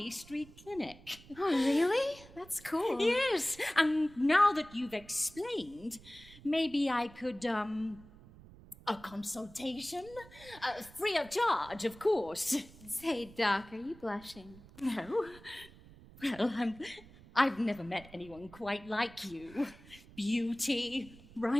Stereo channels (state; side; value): noise; right; rumble, 21 dB below the sound